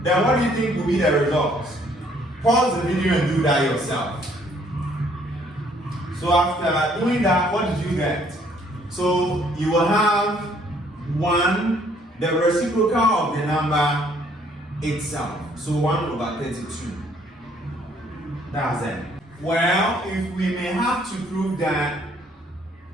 then what do you think will be the results? Pause the video and do that yourself. So after doing that, what did you get? So you will have 1, the reciprocal of the number itself. So 1 over 32. That's it. Well, if we may have to prove that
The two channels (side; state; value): both; normal; correlation 0.63